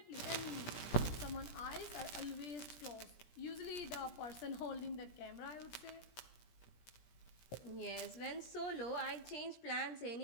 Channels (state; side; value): late; right; 17 ms